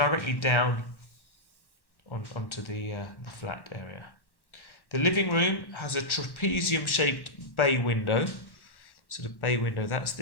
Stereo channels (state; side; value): late; right; 1.1 ms